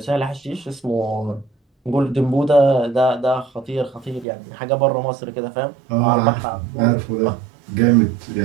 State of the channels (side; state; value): left; drops out; at 4.2 s